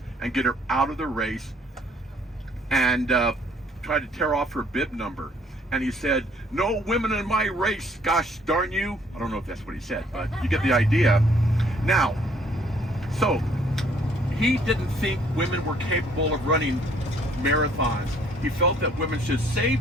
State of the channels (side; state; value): both; normal; correlation 0.62